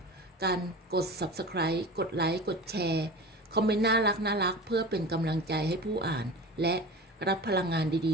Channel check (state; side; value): normal; both; correlation 0.33